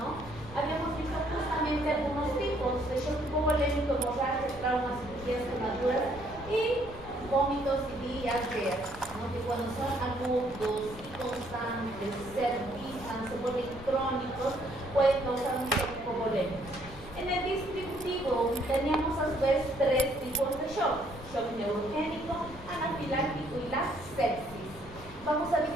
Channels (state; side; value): noise; left; rumble, 16 dB below the sound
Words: Habíamos visto justamente algunos tipos de shock hipovolémico, hemorragia, traumas, cirugías, quemaduras y vómitos y diarreas, ¿no? Que cuando son agudos y constantes, se revisan, se vuelven crónicos, pueden causar un shock hipovolémico. En el distributivo teníamos a su vez 3 tipos de shock: shock neurogénico, anafiláctico y la sepsis. Vamos a